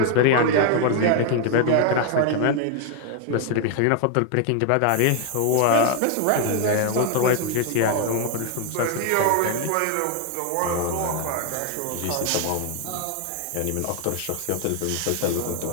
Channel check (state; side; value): different; both; correlation 0.00